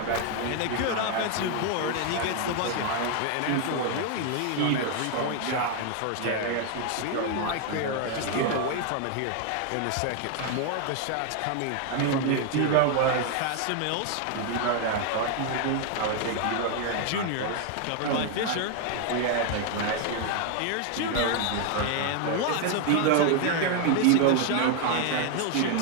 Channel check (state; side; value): different; both; correlation 0.01